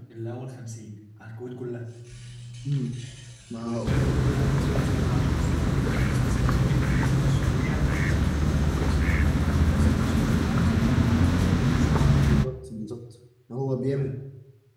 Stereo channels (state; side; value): identical; both; correlation 1.00